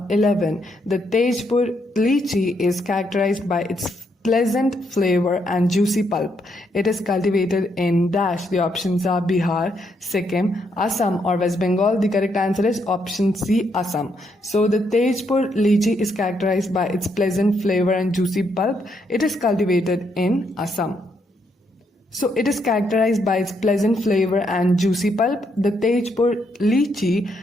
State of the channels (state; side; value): normal; both; correlation 0.76